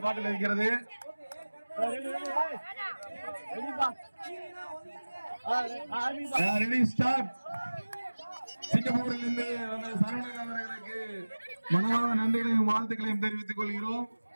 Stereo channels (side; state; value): both; inverted; correlation -1.00